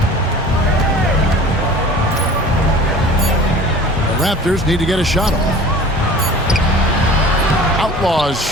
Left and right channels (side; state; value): both; normal; correlation 0.43